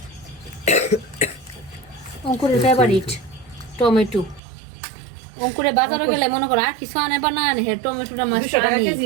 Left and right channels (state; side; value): drops out; left; at 4.4 s